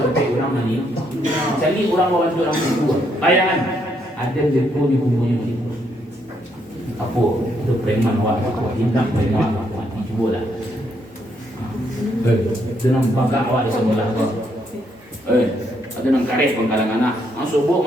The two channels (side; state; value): both; normal; correlation 0.74